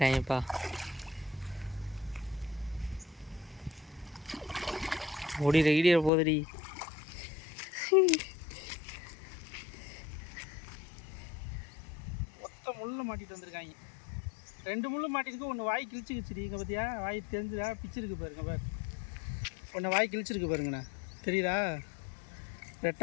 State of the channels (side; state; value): right; drops out; at 6.1 s